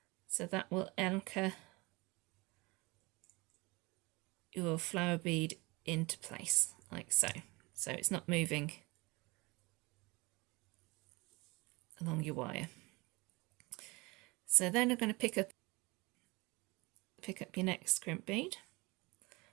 so that will anchor your flower bead into place, like so. So it's not moving along your wire. So then I'm going to pick up your next crimp bead.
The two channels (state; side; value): quieter; left; 24.6 dB